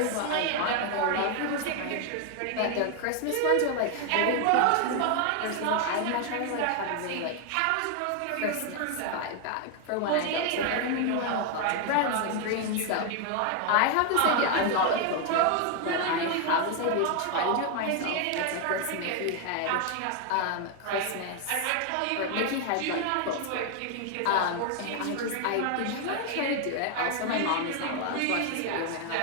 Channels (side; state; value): both; different; correlation 0.01